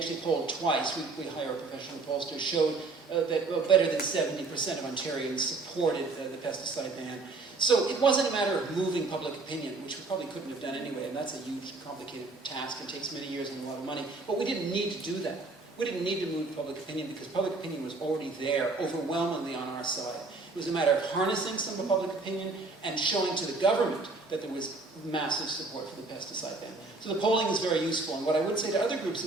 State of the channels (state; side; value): quieter; left; 3.6 dB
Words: polled twice. We hire a professional pollster, showed that better than 70% of Ontarians supported the pesticide ban. So it wasn't a matter of moving public opinion, which we probably couldn't have done anyway, and that's a huge, complicated task and takes many years and a lot of money. But we didn't need to do that. We didn't need to move public opinion because public opinion was already there, overwhelmingly on our side. It was a matter of harnessing some of public opinion and showing to the government that there was massive support for the pesticide ban. So the polling is very useful, and what I would say to other groups